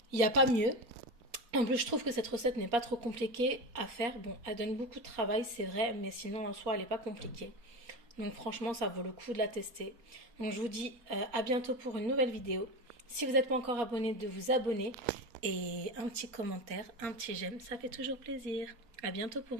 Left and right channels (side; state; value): left; late; 4.2 ms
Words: il n'y a pas mieux. En plus, je trouve que cette recette n'est pas trop compliquée à faire. Bon, elle donne beaucoup de travail, c'est vrai, mais sinon en soi, elle n'est pas compliquée. Donc franchement, ça vaut le coup de la tester. Donc je vous dis à bientôt pour une nouvelle vidéo. Si vous n'êtes pas encore abonné, de vous abonner. Et un petit commentaire, un petit j'aime, ça fait toujours plaisir. À bientôt